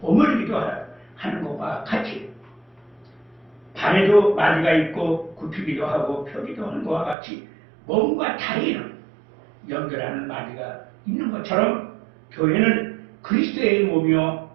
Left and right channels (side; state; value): left; drops out; at 7.2 s